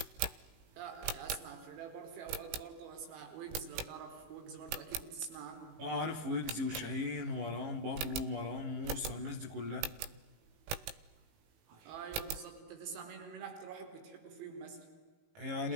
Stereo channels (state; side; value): late; left; 19 ms